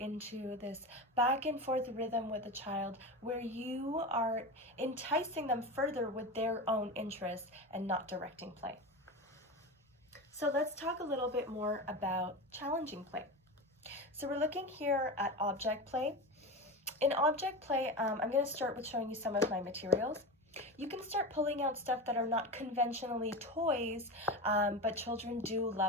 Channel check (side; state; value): both; normal; correlation 0.24